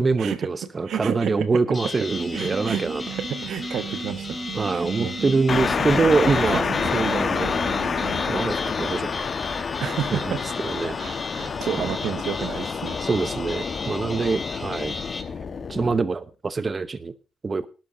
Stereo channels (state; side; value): normal; both; correlation 0.85